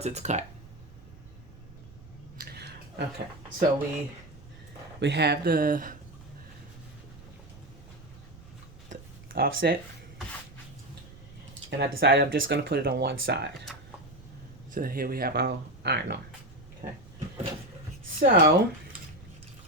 it's cut. Okay, so we have the offset, and I decided I'm just going to put it on one side. So here we have our iron on. Okay, so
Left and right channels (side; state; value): right; noise; rumble, 20 dB below the sound